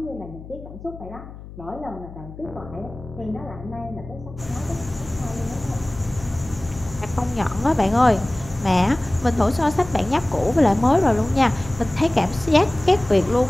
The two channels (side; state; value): left; noise; hum, 15 dB below the sound